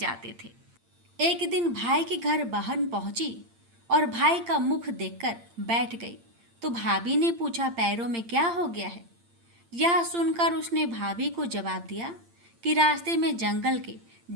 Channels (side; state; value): left; late; 8.7 ms